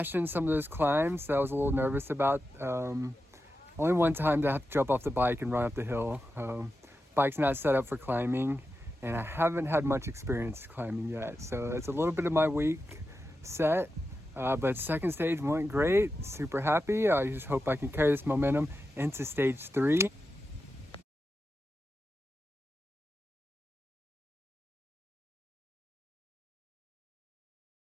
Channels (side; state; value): both; normal; correlation 0.90